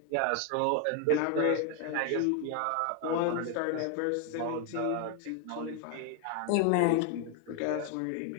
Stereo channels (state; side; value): different; both; correlation 0.01